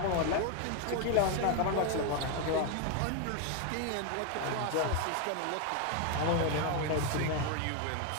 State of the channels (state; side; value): different; both; correlation 0.01